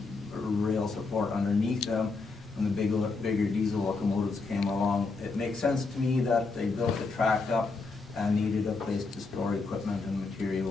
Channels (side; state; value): right; quieter; 4.0 dB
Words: rail support underneath them, when the bigger diesel locomotives came along, it makes sense to me that they built the track up and needed a place to store equipment and